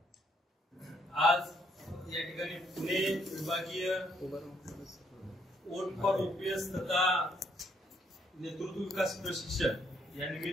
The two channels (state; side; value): normal; both; correlation 0.70